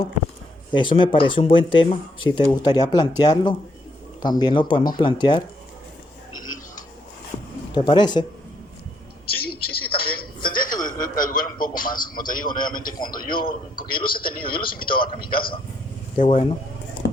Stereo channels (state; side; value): normal; both; correlation 0.74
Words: Eso me parece un buen tema. Si te gustaría plantearlo, también lo podemos plantear. ¿Te parece? Sí, sí, sí, también. Tendría que averiguar un poco más, como te digo nuevamente, porque yo los he tenido, yo los he invitado acá a mi casa. Qué bueno.